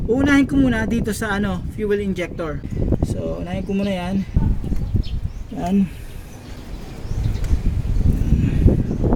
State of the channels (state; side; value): identical; both; correlation 1.00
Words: Uunahin ko muna dito sa fuel injector. So unahin ko muna yan. Yan.